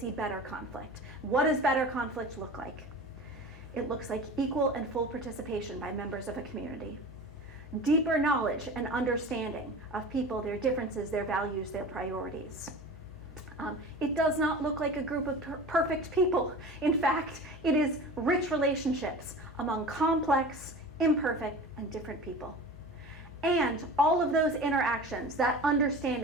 better conflict. What does better conflict look like? It looks like equal and full participation by members of a community. Deeper knowledge and understanding of people, their differences, their values, their priorities. It does not look like a group of perfect people. In fact, it is rich relationships among complex, imperfect, and different people. And all of those interactions, that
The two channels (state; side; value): normal; both; correlation 0.36